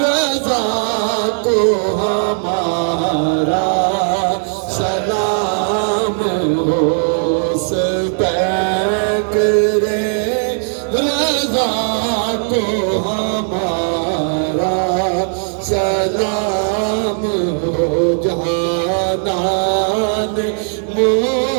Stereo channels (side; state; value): left; silent; digital silence